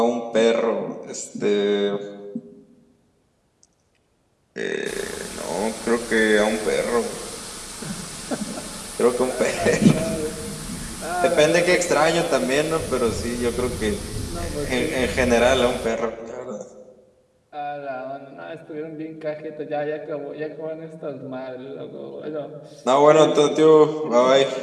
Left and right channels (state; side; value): identical; both; correlation 1.00